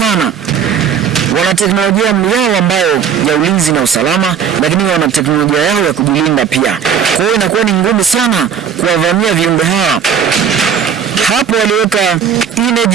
Wana teknolojia yao ambayo ya ulinzi na usalama, lakini wana teknolojia yao ya kujilinda pia. Kwa hiyo inakuwa ni ngumu sana kuwavamia viumbe hawa. Hapo waliweka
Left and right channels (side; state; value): left; quieter; 7.6 dB